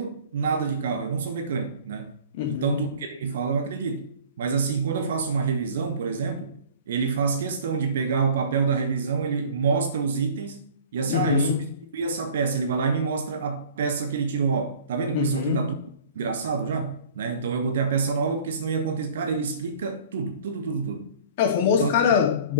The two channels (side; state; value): both; inverted; correlation -0.47